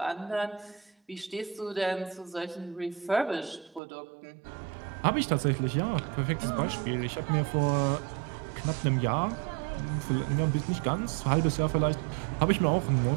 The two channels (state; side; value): drops out; left; at 3.8 s